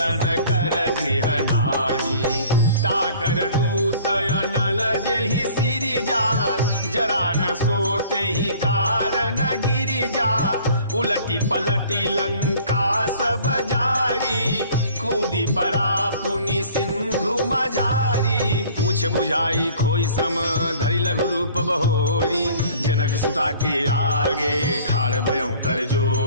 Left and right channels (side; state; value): both; inverted; correlation -0.51